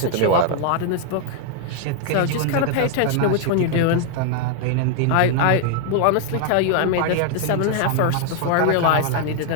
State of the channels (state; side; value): different; both; correlation 0.00